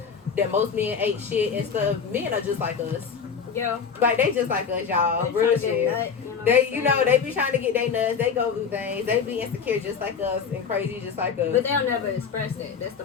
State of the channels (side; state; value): right; quieter; 6.3 dB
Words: that most men ain't shit and stuff, men are just like us. Yeah. Like, they just like us, y'all. They Real tryna get shit. nut, You know, they be trying to get their nuts. They go through things. They be insecure just like us and crazy just like us. But they'll never express that. That's the